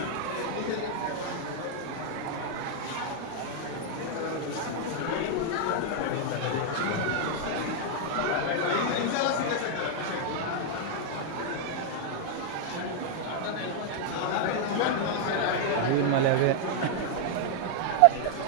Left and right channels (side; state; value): both; different; correlation 0.00